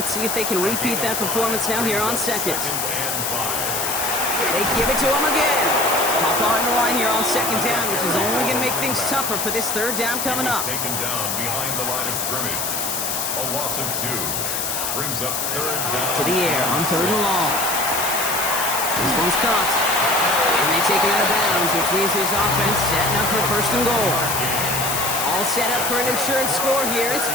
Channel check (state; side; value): noise; left; hiss, 1 dB below the sound